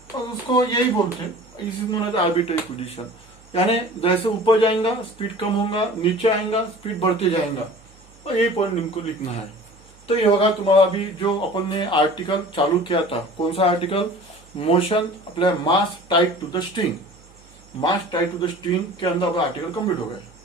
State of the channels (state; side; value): noise; right; hum, 27 dB below the sound